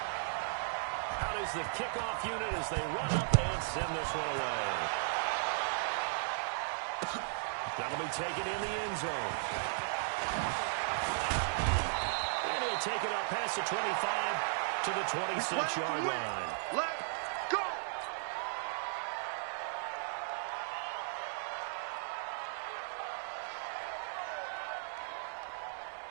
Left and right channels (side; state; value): left; silent; 54 dB below the other